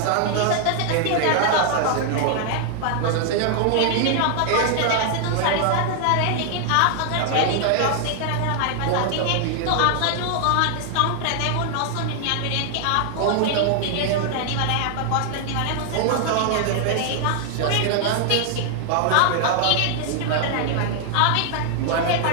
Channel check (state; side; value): different; both; correlation 0.00